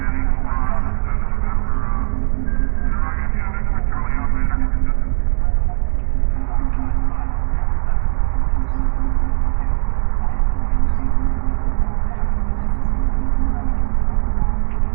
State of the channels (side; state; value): left; silent; 67 dB below the other